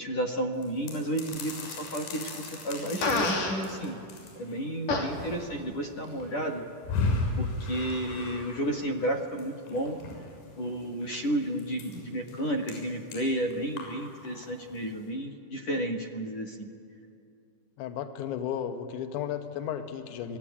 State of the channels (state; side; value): late; right; 10 ms